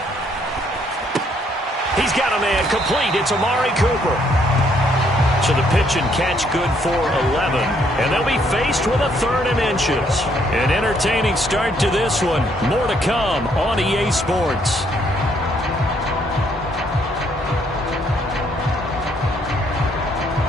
He's got a man complete. It's Amari Cooper. So the pitch and catch good for 11. And they'll be faced with a 3rd and inches. An entertaining start to this one. More to come on EA Sports.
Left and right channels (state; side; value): normal; both; correlation 0.69